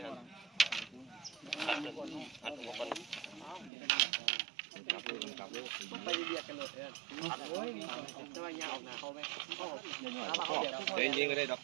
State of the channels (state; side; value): drops out; left; at 3.7 s